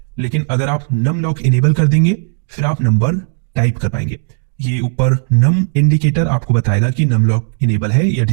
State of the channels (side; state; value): left; silent; 60 dB below the other